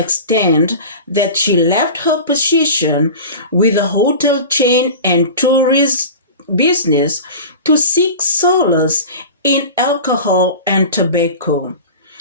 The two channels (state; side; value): inverted; both; correlation -0.33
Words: that she left her position with the hotel chain and tourist business to seek solace in alcohol and tobacco.